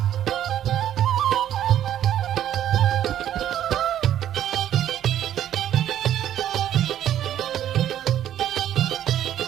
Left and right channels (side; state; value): left; quieter; 11.2 dB